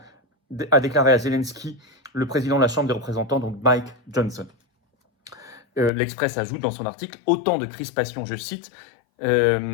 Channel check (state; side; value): drops out; right; at 5.9 s